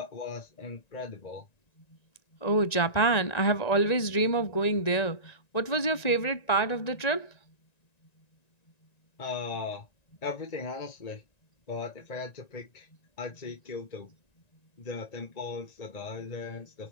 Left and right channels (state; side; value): late; right; 1.9 ms